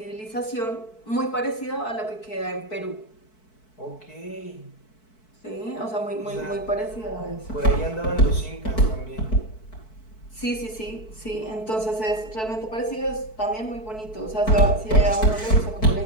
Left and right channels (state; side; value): late; right; 4.6 ms